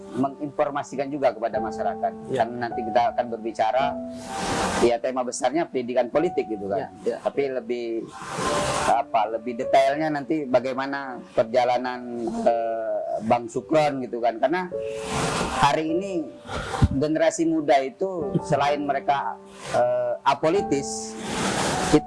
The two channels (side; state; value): both; identical; correlation 1.00